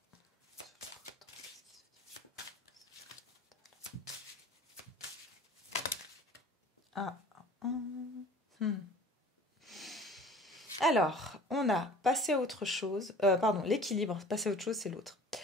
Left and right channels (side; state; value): both; normal; correlation 0.45